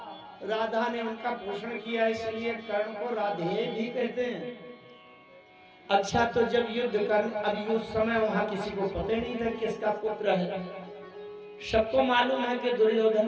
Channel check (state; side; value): identical; both; correlation 1.00